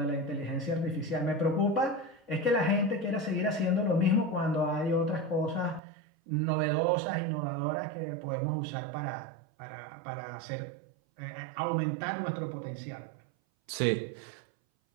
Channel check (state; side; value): drops out; left; at 5.8 s